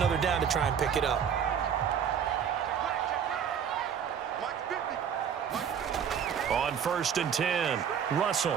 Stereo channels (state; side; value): quieter; left; 7.9 dB